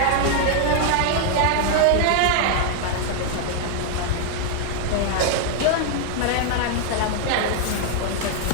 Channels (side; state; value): both; different; correlation 0.00